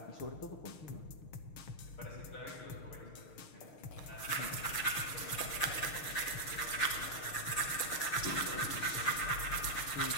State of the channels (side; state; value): right; late; 6.5 ms